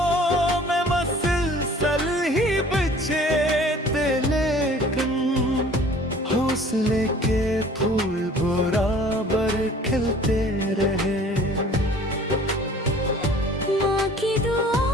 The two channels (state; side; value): normal; both; correlation 0.50